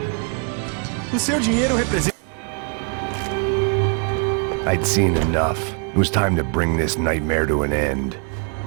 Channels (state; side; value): quieter; left; 39.9 dB